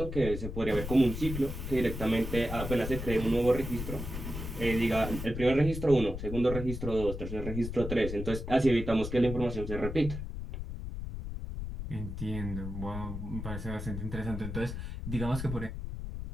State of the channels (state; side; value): noise; left; rumble, 6 dB below the sound